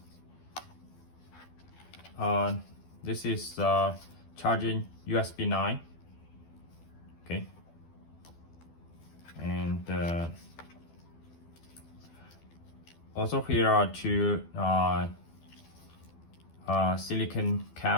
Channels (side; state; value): right; late; 12 ms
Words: This is charging USB 9. Okay. And also here are two silicone